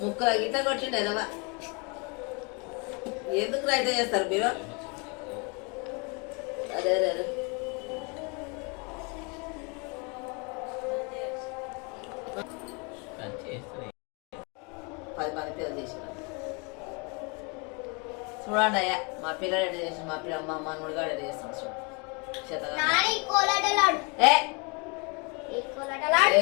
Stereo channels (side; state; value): right; quieter; 32.0 dB